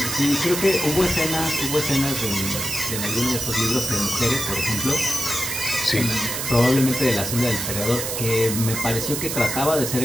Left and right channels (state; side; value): noise; right; hiss, 3 dB below the sound